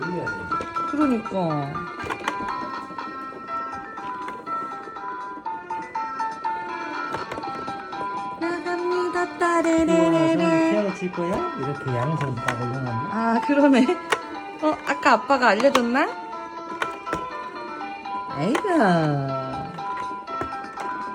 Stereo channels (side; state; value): both; identical; correlation 1.00